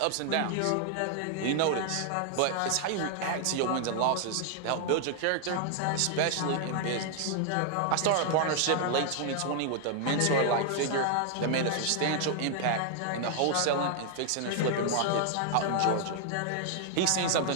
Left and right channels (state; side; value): different; both; correlation 0.00